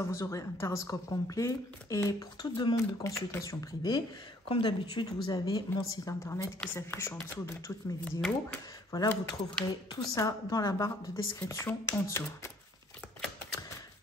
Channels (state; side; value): normal; both; correlation 0.61